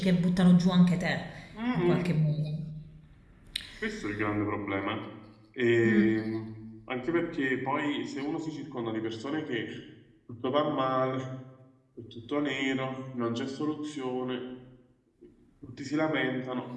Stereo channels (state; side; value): identical; both; correlation 1.00